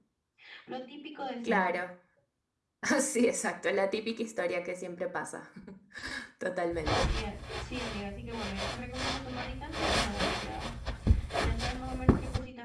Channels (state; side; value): identical; both; correlation 1.00